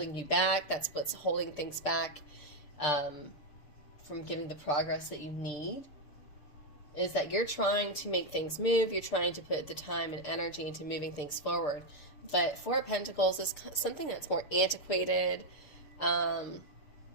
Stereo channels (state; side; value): late; right; 6.7 ms